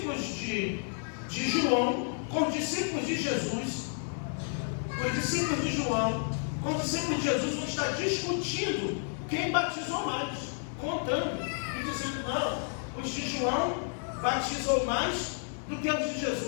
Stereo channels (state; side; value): silent; right; 57 dB below the other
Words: de João com os discípulos de Jesus, os discípulos de João com os discípulos de Jesus vão estar discutindo quem batizou mais, contando e dizendo: não, os de João batizou mais do que os de